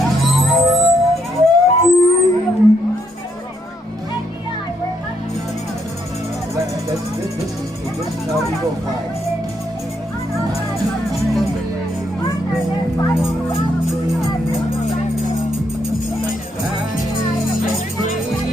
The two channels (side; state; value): both; normal; correlation 0.75